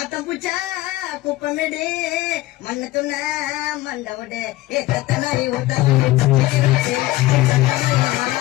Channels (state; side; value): quieter; right; 18.0 dB